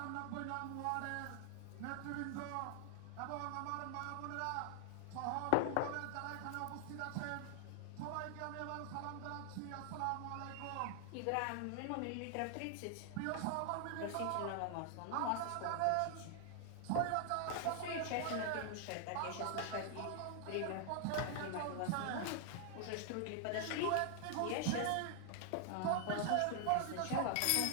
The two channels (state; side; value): different; both; correlation 0.00